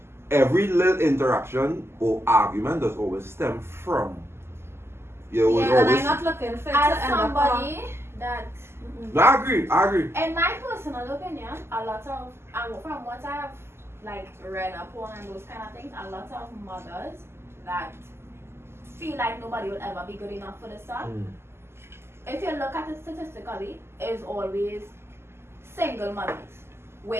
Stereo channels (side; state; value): left; late; 0.12 ms